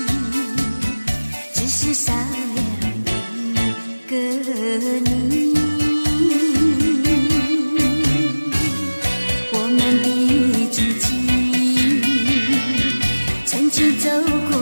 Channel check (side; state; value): both; inverted; correlation -1.00